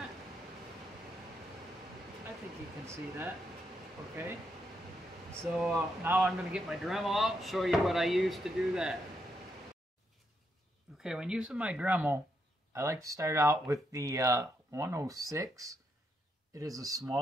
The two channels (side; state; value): both; normal; correlation 0.79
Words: I think you can see that. Okay. So now I'm going to get my Dremel out, show you what I use to do that. Okay, when using my Dremel, I like to start out with the 106. It is a